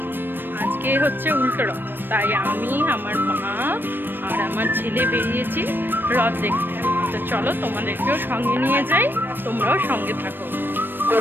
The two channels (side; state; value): left; late; 0.095 ms